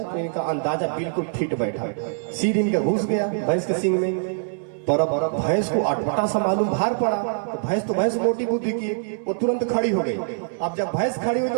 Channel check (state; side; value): silent; left; digital silence